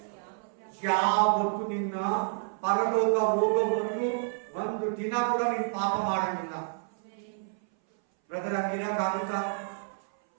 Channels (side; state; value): left; silent; 58 dB below the other